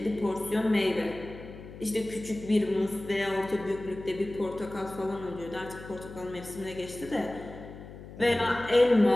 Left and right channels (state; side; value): noise; left; hum, 14 dB below the sound